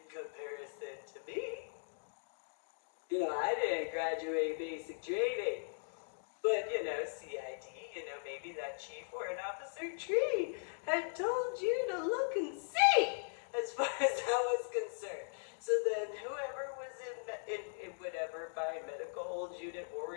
comparison to me? You know, I didn't graduate basic training, but, you know, CID, you know, maybe that Chief Warrant Officer Tree had told you to look and see as far as that was concerned. So then whoever was in whatever, by medical hold unit,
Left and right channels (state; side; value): silent; right; digital silence